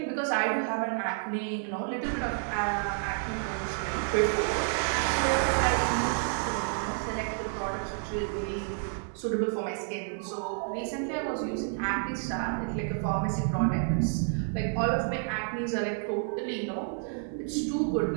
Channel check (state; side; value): silent; left; 58 dB below the other